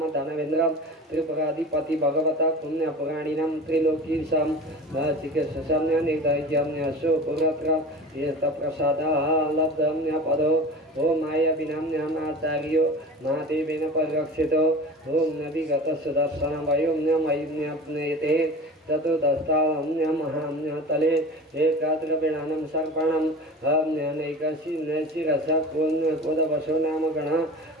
धनवेन्द्रं त्रिपुराधिपति भगवता पुण्य पुराणिनां त्रिलोकीशं चिकित्सम्य निर्दयम्य सुपुरत्र यस्तप्रसादः लब्धम्य पदो ॐ मायाविनाम्यमाचार्यो महादेवेन परिरक्षितो ॐ नविगतसुदर्शनवयोम्य मयिम्यप्नेते चतुर्दस्ताम्य महाम्य तले एकाद्रविणानं सर्पणं नैकशिरसा कोदवशो नाम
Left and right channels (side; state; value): both; normal; correlation 0.35